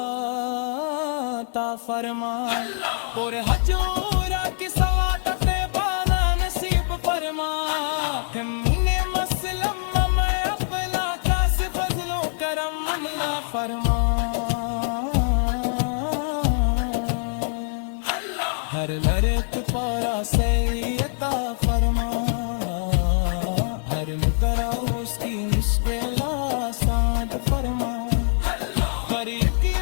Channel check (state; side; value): silent; right; 63 dB below the other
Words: عطا فرما، اور حجورہ کی سعادت بالا نصیب فرما، ہمیں مسلم میں اپنا کاس فضل و کرم عطا فرما، ہر لرک پارا سے عطا فرما، ہر مقرہ اس کی مشکل آسان فرما، ہر